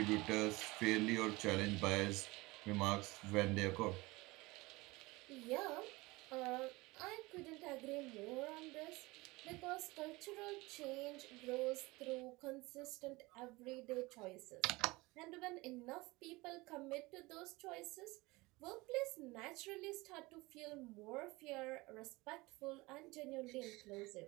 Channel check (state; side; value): quieter; left; 22.3 dB